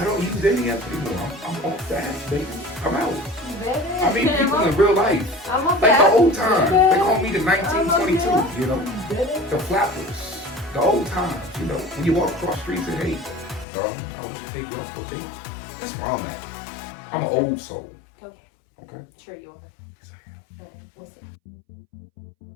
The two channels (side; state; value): right; drops out; at 13.7 s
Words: don't use dating apps anymore. I'm off that, baby. I'm out. Baby. I mean, people in real life. I'm Like the old time. They call me the 1922, you know? The flappers. The old times, you know? When you walk across streets and hey, I would take you out for a date. That's where I'm at. I'm an old soul. Okay. Okay? Sure you are. Yes, I am. Alright, we'll see.